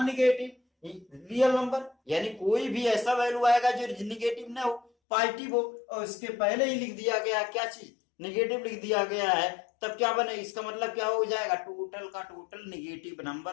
निगेटिव रियल नंबर, यानी कोई भी ऐसा वैल्यू आएगा जो निगेटिव ना हो, पॉजिटिव हो, और इसके पहले ही लिख दिया गया क्या चीज, निगेटिव लिख दिया गया है, तब क्या बने, इसका मतलब क्या हो जाएगा, टोटल का टोटल निगेटिव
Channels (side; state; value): right; drops out; at 4.9 s